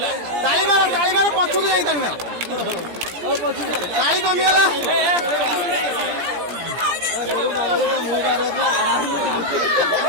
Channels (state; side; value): late; left; 17 ms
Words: ताली मारो पछुक जाई ताली मारो ताली कमिगला